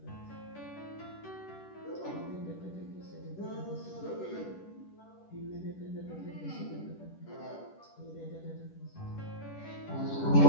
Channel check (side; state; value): right; late; 10 ms